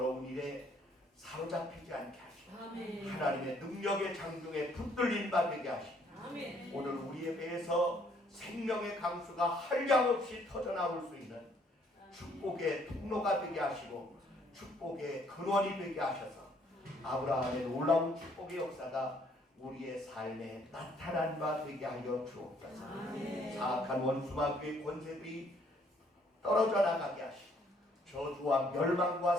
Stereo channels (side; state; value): both; normal; correlation 0.65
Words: 일에 사로잡히지 않게 하시고 하나님의 능력의 장중에 붙들린 바 되게 하시고 오늘 우리의 배에서 생명의 강수가 한량없이 터져나올 수 있는 축복의 통로가 되게 하시고 축복의 근원이 되게 하셔서 아브라함의 놀라운 축복의 역사가 우리의 삶에 나타난 바 되게 하여 주옵소서. 사악한 원수마귀의 권세들이 떨어져 나가게 하시고 저주와 멸망과